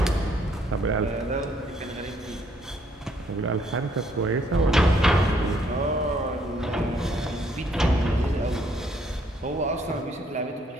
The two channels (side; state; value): both; normal; correlation 0.68